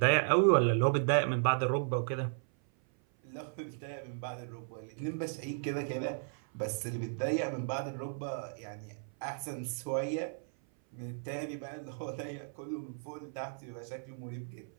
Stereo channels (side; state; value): left; silent; 54 dB below the other